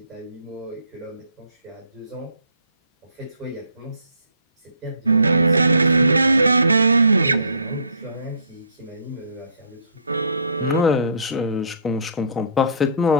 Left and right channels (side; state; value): both; inverted; correlation -0.58